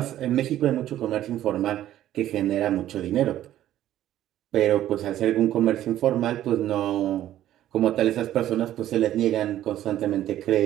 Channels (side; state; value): left; quieter; 12.7 dB